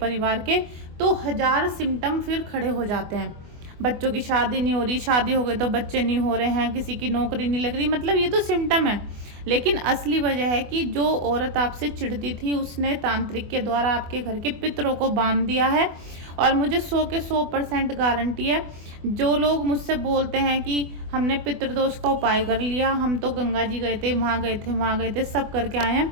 के, तो 1000 सिम्टम फिर खड़े हो जाते हैं। बच्चों की शादी नहीं हो रही, शादी हो गई तो बच्चे नहीं हो रहे हैं, किसी की नौकरी नहीं लग रही, मतलब ये तो सिम्टम है। लेकिन असली वजह है कि जो औरत आपसे चिढ़ती थी, उसने तांत्रिक के द्वारा आपके घर के पितरों को बांध दिया है। और मुझे 100 के 100% गारंटी है, जो लोग मुझसे बोलते हैं कि हमने पितृदोष का उपाय कर लिया, हम तो गंगा जी गए थे, वहाँ गए थे, वहाँ गए थे, सब करके आए हैं,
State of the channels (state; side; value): late; left; 24 ms